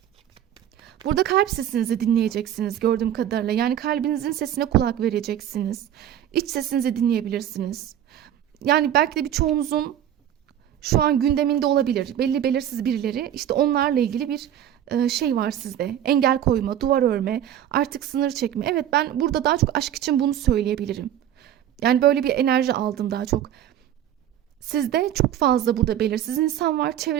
burada kalp sesinizi dinleyeceksiniz gördüğüm kadarıyla. Yani kalbinizin sesine kulak vereceksiniz. İç sesinizi dinleyebilirsiniz. Yani belki de birçoğunuzun şu an gündeminde olabilir. Belli belirsiz birileri. İşte onlarla ilgili bir şey var sizde. Engel koyma, duvar örme, artık sınır çekme. Evet, ben burada daha çok aşk için bunu söyleyebilirim. Yani böyle bir enerji aldım daha çok. Sizde çok fazla burada belirsiz insan var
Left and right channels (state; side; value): quieter; left; 10.8 dB